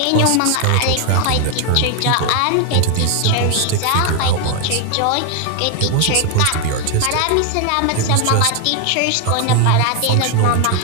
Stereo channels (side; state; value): both; different; correlation 0.00